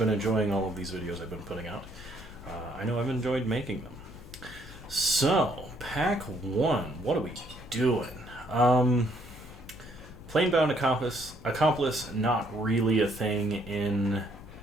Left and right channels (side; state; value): left; noise; hum, 18 dB below the sound